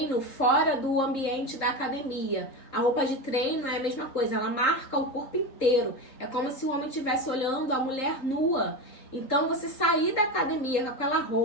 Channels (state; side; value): late; right; 3.7 ms